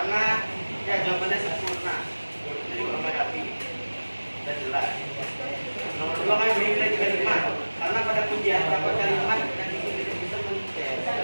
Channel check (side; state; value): both; inverted; correlation -1.00